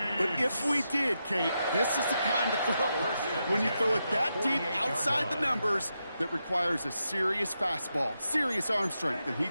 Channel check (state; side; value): inverted; both; correlation -0.86